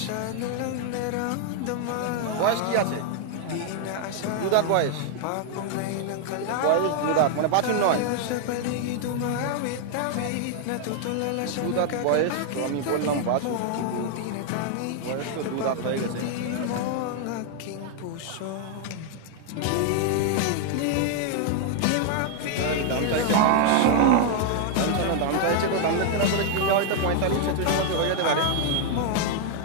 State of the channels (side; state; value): both; different; correlation 0.00